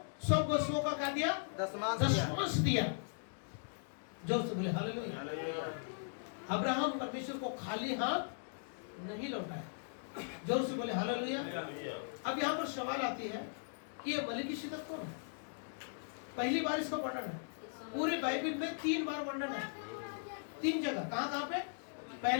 सब वस्तुओं का क्या दिया? दशमांश दिया। जोर से बोले हालेलुया। अब्राहम परमेश्वर को खाली हाथ नहीं लौटाया। जोर से बोले हालेलुया। अब यहाँ पर सवाल आती है कि ये मलिकिसिदक कौन है? पहली बार इसका वर्णन है। पूरे बाइबल में 3 बार वर्णन है, 3 जगह। कहाँ पे?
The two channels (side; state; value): right; silent; digital silence